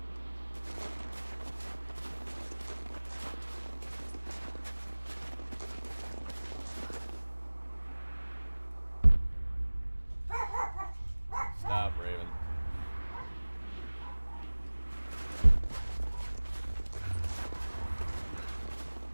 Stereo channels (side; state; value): both; inverted; correlation -1.00